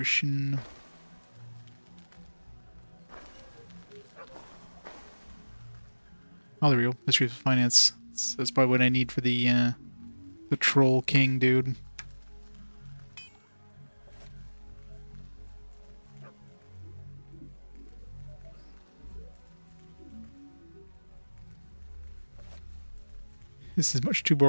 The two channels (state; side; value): inverted; both; correlation -1.00